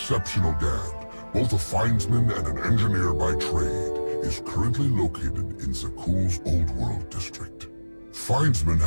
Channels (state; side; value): inverted; both; correlation -1.00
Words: Gand, both a findsman and an engineer by trade, is currently located in Zakuul's Old World district. Findsmen